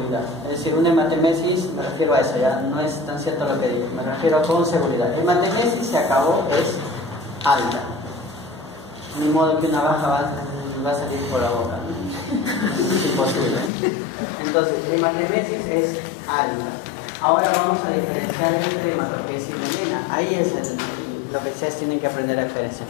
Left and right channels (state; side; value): drops out; right; at 13.7 s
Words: Es decir, una hematemesis, me refiero a eso, ya no es tan cierto lo que digo, me refiero con seguridad. La hematemesis se acabó, es alta. Ni modo que una baja va a salir por la boca, ¿no? Es imposible. Entonces, hematemesis es alta. Ahora vamos a diferenciar entre hematoquesia y melena. Ahí es lo que ustedes tienen que aprender a diferenciar.